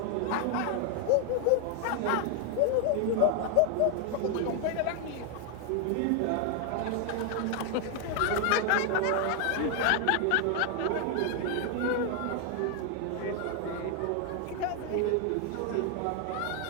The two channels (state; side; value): different; both; correlation 0.00